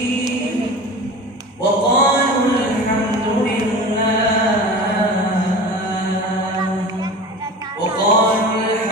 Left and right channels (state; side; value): normal; both; correlation 0.35